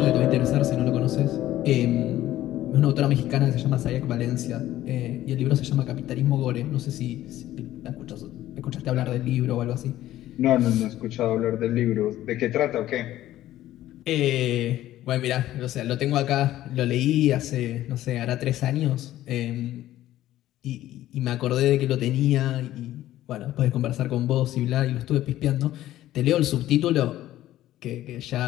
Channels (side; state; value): right; quieter; 14.0 dB